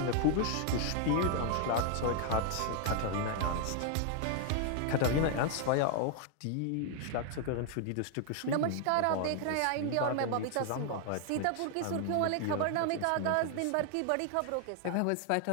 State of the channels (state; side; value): different; both; correlation 0.00